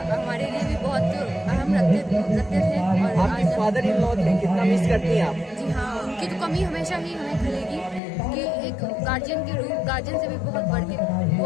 हमारे लिए भी बहुत अहम रखते थे। और आपकी फादर इन लॉ थे, कितना मिस करती हैं आप? जी हाँ, उनकी तो कमी हमेशा ही हमें खलेगी कि एक गार्जियन के रूप, गार्जियन से भी बहुत बढ़ के वो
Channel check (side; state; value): right; drops out; at 8.0 s